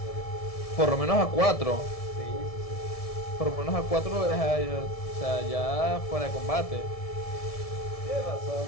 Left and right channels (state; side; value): late; right; 1.7 ms